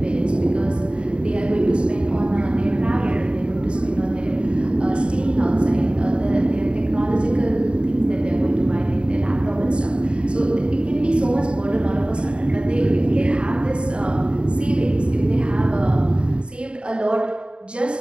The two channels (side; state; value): left; late; 0.054 ms